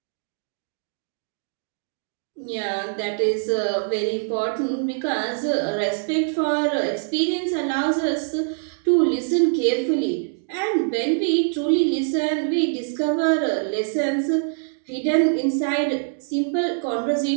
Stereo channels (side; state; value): left; silent; digital silence